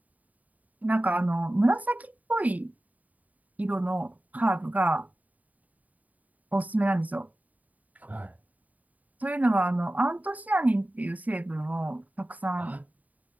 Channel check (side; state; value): left; late; 0.073 ms